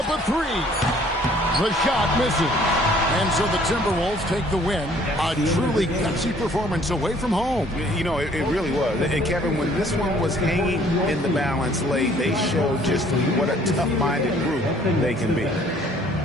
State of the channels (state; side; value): normal; both; correlation 0.58